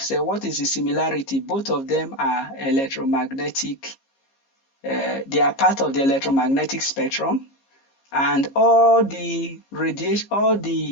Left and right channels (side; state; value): right; late; 15 ms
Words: said, what is the similarity? Both of them are electromagnetic. They are part of the electromagnetic spectrum, and all the radiation, all